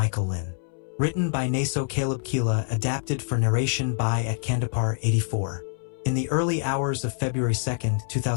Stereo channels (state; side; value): silent; right; 61 dB below the other